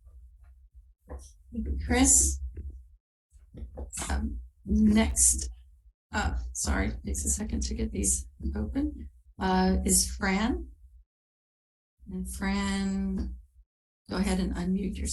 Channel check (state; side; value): identical; both; correlation 1.00